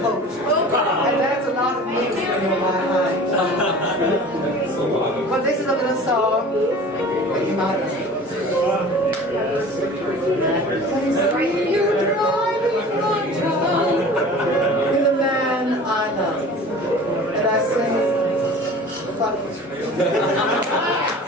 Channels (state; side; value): normal; both; correlation 0.41